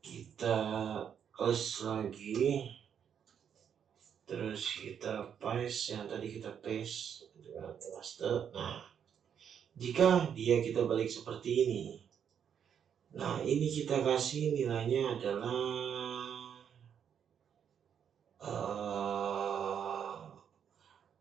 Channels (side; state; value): left; quieter; 8.2 dB